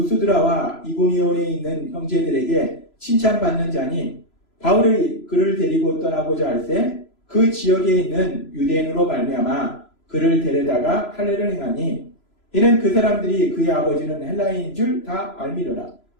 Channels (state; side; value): late; right; 3.0 ms